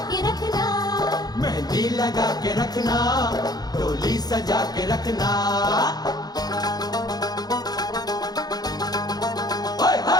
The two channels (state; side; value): late; right; 0.19 ms